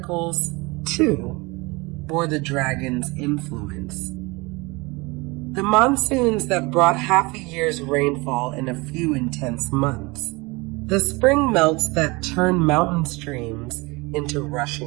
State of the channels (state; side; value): quieter; left; 25.1 dB